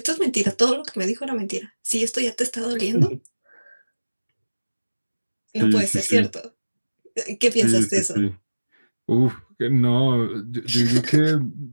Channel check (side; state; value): both; inverted; correlation -1.00